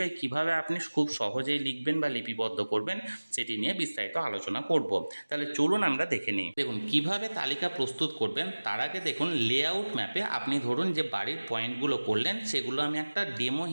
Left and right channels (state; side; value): inverted; both; correlation -1.00